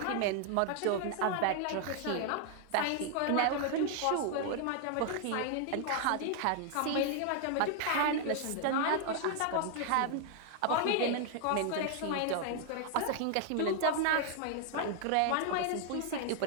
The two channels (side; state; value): both; different; correlation 0.00